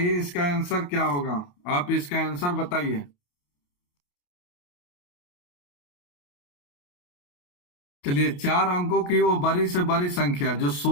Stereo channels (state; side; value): late; right; 28 ms